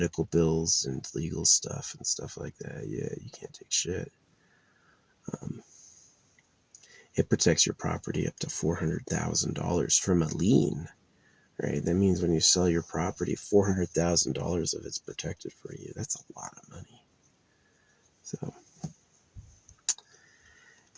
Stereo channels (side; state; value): both; identical; correlation 1.00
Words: bills, and legal stuff and stuff like that. Yeah, you can't take shit. It protects your property up to $400,000 from a lien, right? That means when you sell your property, $400,000 of it's protected for you. That's a lot of money. So,